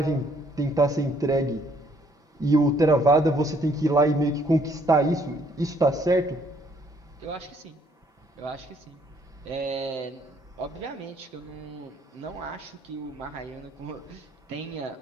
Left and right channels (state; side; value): normal; both; correlation 0.66